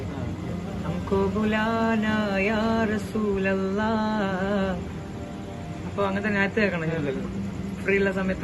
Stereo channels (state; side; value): identical; both; correlation 1.00